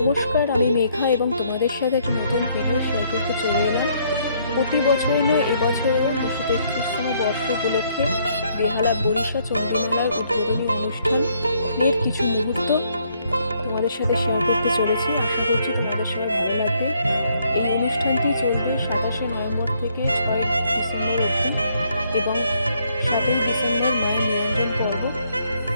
নমস্কার, আমি মেঘা এবং তোমাদের সাথে একটা নতুন ভিডিও শেয়ার করতে চলে এলাম। প্রতি বছরই নয়, এবছরও 233তম বর্ষ উপলক্ষে বেহালা বরিশা চণ্ডীমেলার উদ্বোধনী অনুষ্ঠানের কিছু মুহূর্ত তোমাদের সাথে শেয়ার করতে চলেছি। আশা করছি তোমাদের সবাই ভালো লাগবে। এই অনুষ্ঠানটি চলবে 27শে নভেম্বর থেকে 6 ডিসেম্বর অবধি এবং 7ই ডিসেম্বর মায়ের নিরঞ্জন পর্ব।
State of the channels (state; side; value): inverted; both; correlation -0.69